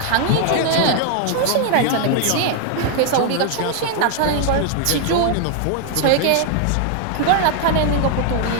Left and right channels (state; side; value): different; both; correlation 0.00